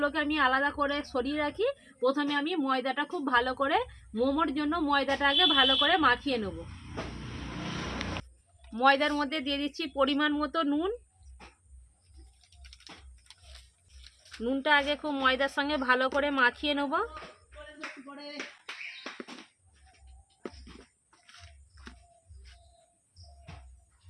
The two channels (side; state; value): both; identical; correlation 1.00